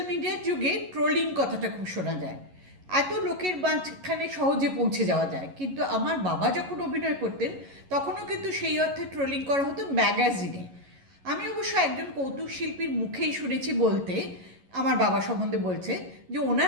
মিডিয়ার যুগে ট্রোলিং কথাটা খুব শোনা যায়। এত লোকের মাঝখানে সহজে পৌঁছে যাওয়া যায়, কিন্তু আমার বাবা যখন অভিনয় করতেন তখনও কিন্তু সেই অর্থে ট্রোলিং করা হতো ম্যাগাজিনে। আমি অবশ্য একজন কৌতুক শিল্পীর মুখেই শুনেছি বলতে, আমার বাবা সম্বন্ধে বলছে যে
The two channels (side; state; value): left; late; 11 ms